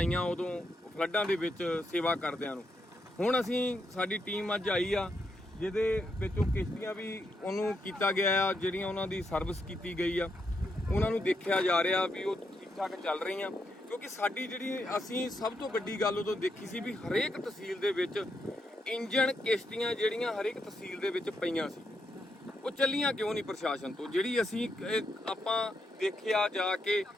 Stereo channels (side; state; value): both; normal; correlation 0.81